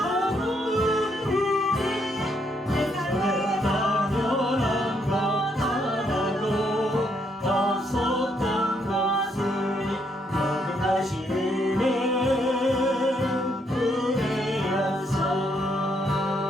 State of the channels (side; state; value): both; normal; correlation 0.74